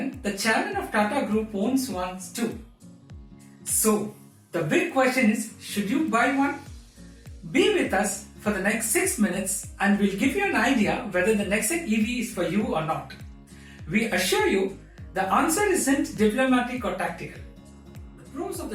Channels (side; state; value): both; identical; correlation 1.00